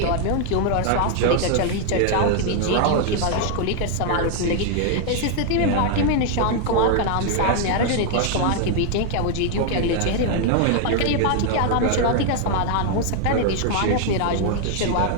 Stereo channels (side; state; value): both; different; correlation 0.00